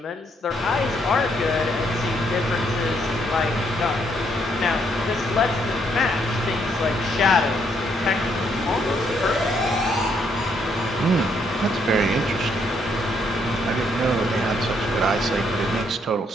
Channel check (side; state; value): both; normal; correlation 0.72